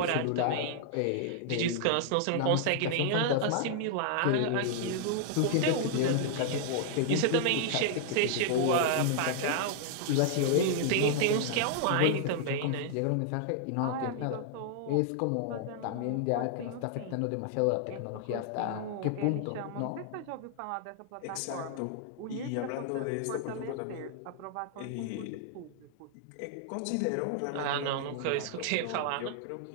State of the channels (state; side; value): different; both; correlation -0.01